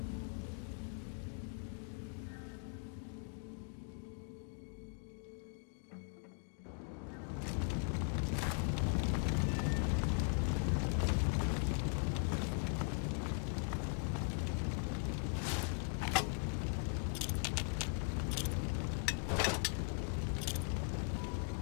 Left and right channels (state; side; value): silent; right; 51 dB below the other